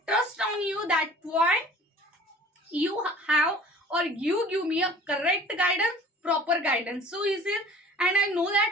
trust on you. That's why you have, or you give me a correct guidance, proper guidance. So he says, and I know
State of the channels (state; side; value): normal; both; correlation 0.47